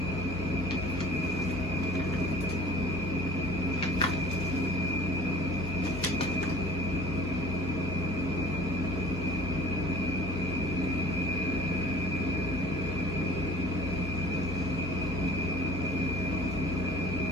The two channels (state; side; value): normal; both; correlation 0.48